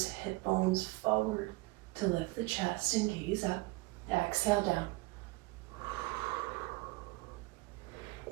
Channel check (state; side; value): quieter; left; 22.9 dB